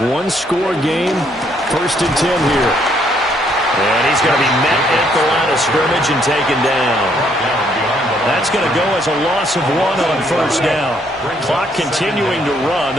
one-score game. First and 10 here. And he's going to be met at the line of scrimmage and taken down. That's going to go as a loss of 1 on first down. Clock continuing to run.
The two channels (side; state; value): left; noise; hum, 27 dB below the sound